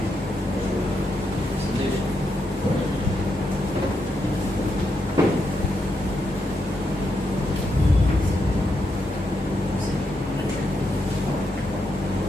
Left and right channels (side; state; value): both; normal; correlation 0.82